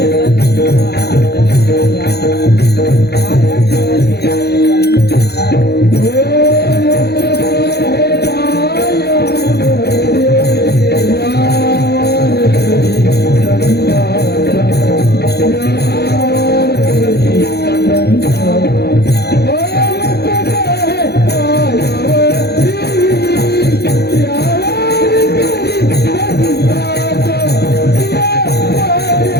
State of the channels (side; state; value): right; late; 0.48 ms